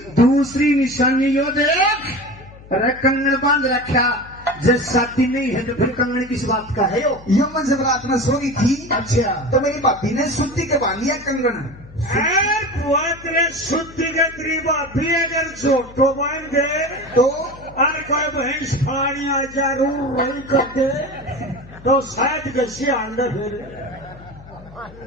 दूसरी निशानी यो देख, अरे कंगन बांध रखा। जब शादी नहीं है तो फिर कंगन किस बात का है? यो मैं जब रात में सो रही थी, अच्छा तो मेरी भाभी ने सुत्ती के बांध लिया कंगन। तेरे शुद्धि के त्रिबा भी अगर छोटो बन गए तो और कोई भैंस फाड़िया जरूर वही कर दे तो शायद कैसे अंदर फिर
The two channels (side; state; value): left; noise; hum, 20 dB below the sound